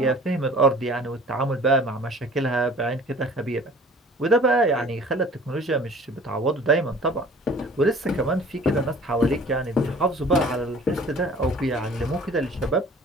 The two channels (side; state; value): both; normal; correlation 0.48